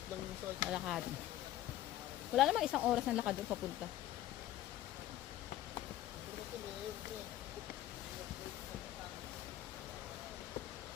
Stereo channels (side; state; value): right; quieter; 13.6 dB